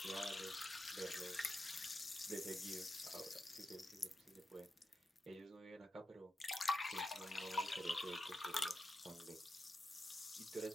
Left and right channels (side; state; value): both; normal; correlation 0.88